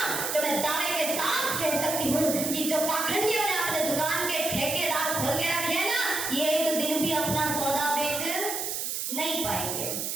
तो मैं दावे के साथ कह सकती हूँ कि जो पाखंडियों ने अपने दुकान के ठेकेदार खोल के रखे हैं ना, ये एक दिन भी अपना सौदा बेच नहीं पाएंगे।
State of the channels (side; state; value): right; noise; hiss, 2 dB below the sound